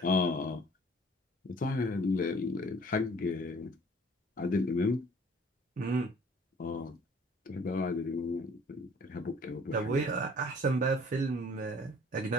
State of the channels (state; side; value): normal; both; correlation 0.54